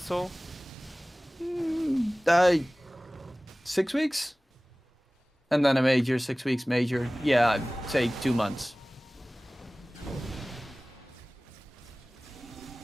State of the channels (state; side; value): normal; both; correlation 0.98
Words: 6 weeks? And then a major, 6 weeks major. Yeah, I'd say 2 months.